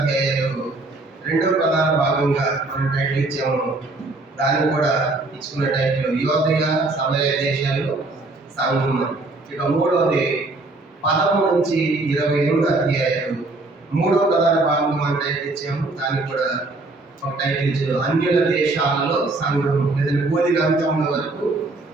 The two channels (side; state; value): left; quieter; 3.1 dB